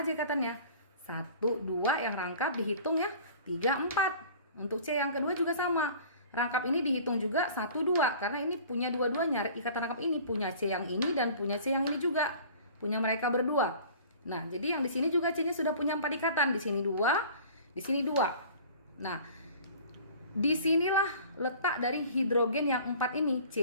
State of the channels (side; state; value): both; inverted; correlation -0.45